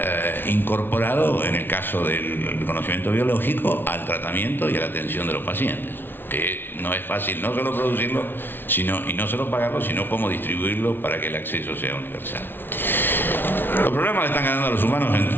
incorporado, en el caso del conocimiento biológico, al tratamiento y a la atención de los pacientes, que no es fácil no solo producirlo y no solo pagarlo, sino cómo distribuirlo para que el acceso sea universal. Los problemas están ganando a los humanos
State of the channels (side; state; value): right; late; 0.10 ms